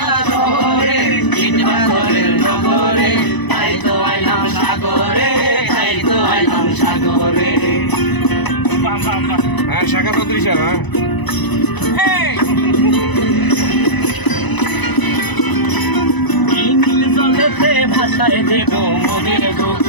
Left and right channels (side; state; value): right; late; 1.0 ms